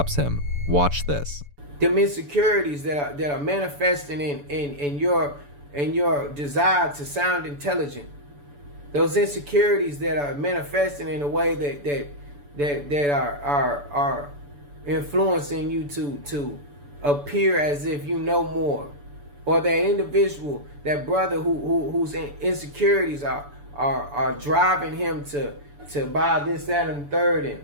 him. Watch this. Them insecurities that are manifesting in your desire to sound intelligent. Those insecurities that are manifesting in a way that are influencing you to appear as if you know more, or that individual, that brother whose insecurities are driving him to buy this, that, and the third, and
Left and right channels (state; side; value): late; left; 6.9 ms